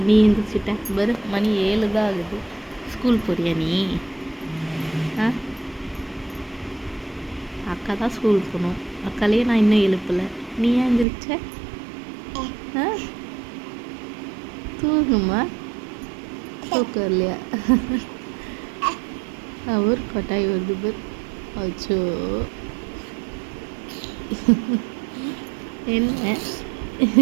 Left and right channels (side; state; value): left; drops out; at 11.1 s